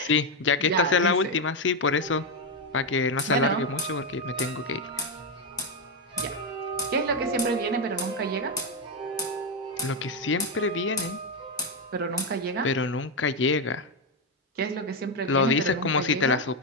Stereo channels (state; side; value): normal; both; correlation 0.05